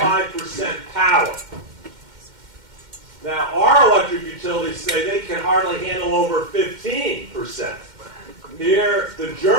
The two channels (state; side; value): late; left; 2.1 ms